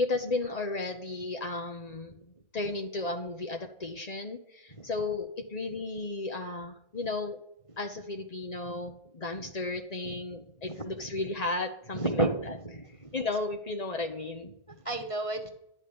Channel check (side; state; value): right; late; 1.9 ms